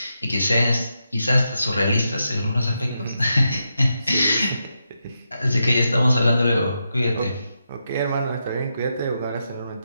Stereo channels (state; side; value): inverted; both; correlation -0.85